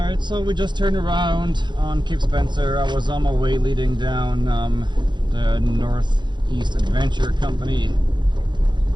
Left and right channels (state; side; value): late; left; 0.22 ms